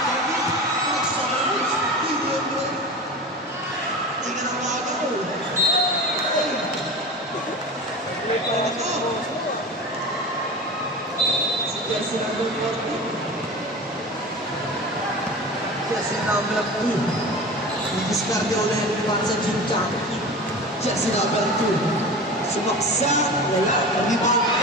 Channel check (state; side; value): normal; both; correlation 0.32